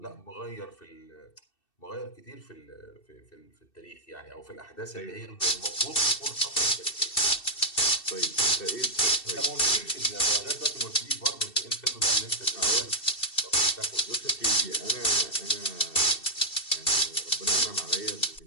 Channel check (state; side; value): late; right; 2.7 ms